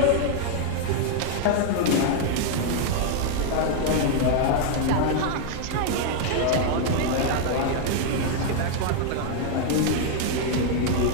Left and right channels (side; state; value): both; different; correlation 0.00